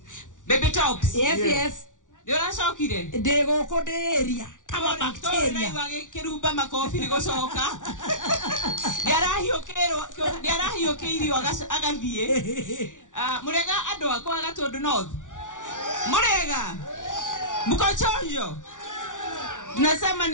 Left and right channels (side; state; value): right; late; 0.87 ms